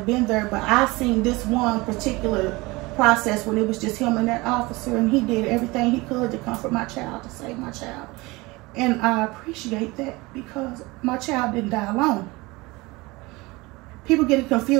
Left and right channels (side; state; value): left; quieter; 22.9 dB